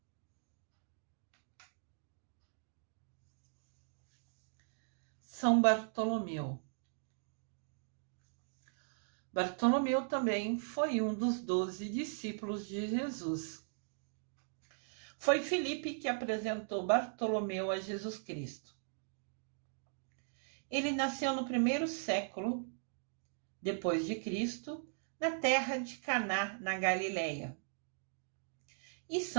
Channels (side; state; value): left; silent; digital silence